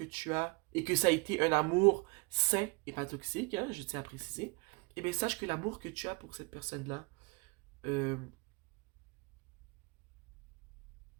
tu as, et que ça a été un amour sain et pas toxique, hein, je tiens à préciser, eh bien sache que l'amour que tu as pour cette personne-là, euh,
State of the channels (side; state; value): left; quieter; 29.2 dB